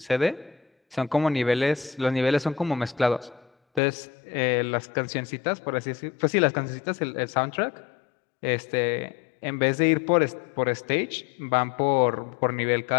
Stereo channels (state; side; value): drops out; right; at 3.8 s